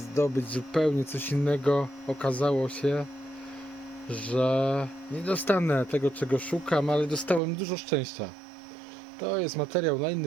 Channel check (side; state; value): left; drops out; at 7.4 s